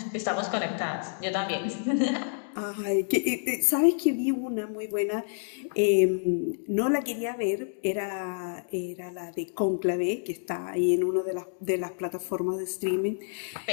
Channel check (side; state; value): right; silent; digital silence